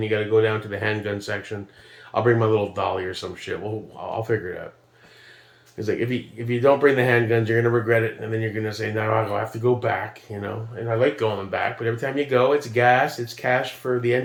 you got to go down to the handgun section. I'll bring my little dolly or some shit. I'll figure it out. It's like, if you don't bring the handguns, you're going to regret it. And then you're going to say, no, I'll have to go back, you know. And I like going back. But every time you go, it's gas. It's cash for the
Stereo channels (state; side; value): identical; both; correlation 1.00